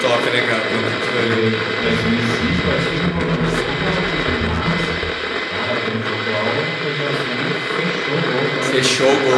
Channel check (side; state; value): both; identical; correlation 1.00